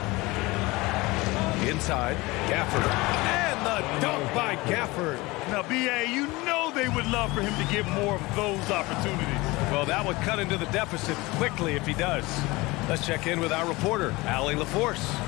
Inside, Gafford. And the dunk by Gafford. Now, B.A., you know they would love for him to get more of those opportunities. Well, that would cut into the deficit quickly if he does. Let's check in with our reporter, Allie LaForce.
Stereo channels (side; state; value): right; quieter; 22.1 dB